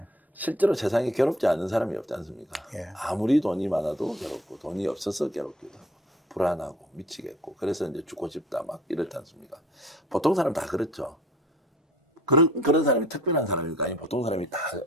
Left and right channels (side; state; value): both; normal; correlation 0.52